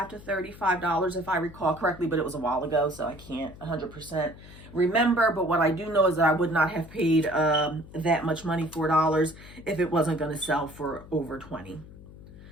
to $35 if I recall correctly, but it was a while ago, so I can't 100% remember. But what I do know is that I would not have paid that much money, $4, if it wasn't going to sell for over $20.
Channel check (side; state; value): left; noise; hum, 18 dB below the sound